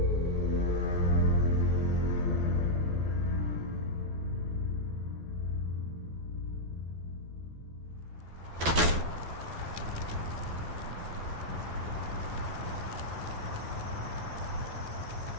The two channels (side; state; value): left; late; 12 ms